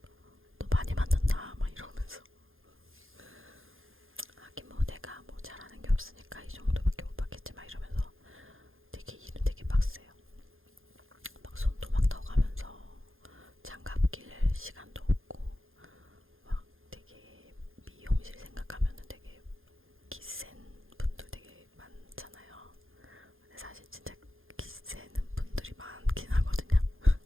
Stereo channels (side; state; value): left; late; 0.60 ms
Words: 너 많이 받는다 막 이러면서 하긴 뭐 내가 뭐 잘하는 게 없으니까 이 정도밖에 못 받겠지 막 이러면서 되게 일은 되게 빡세요. 막 손도 막 더가면서 장갑 낄 시간도 없고 막 되게 미용실 생각하면은 되게 기센 분들 되게 많잖아요. 근데 사실 진짜 기세는 분들이 많긴 하거든요.